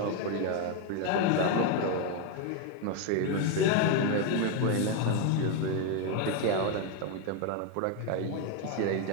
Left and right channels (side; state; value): both; different; correlation 0.02